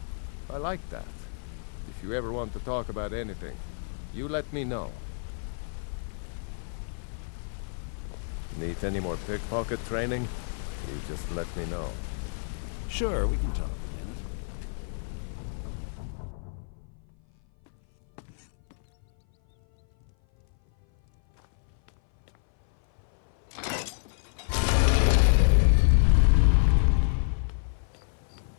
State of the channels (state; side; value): silent; right; 56 dB below the other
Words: I like that. If you ever want to talk about anything, you let me know. Need any more pickpocket training? You just let me know. Sure, we can talk.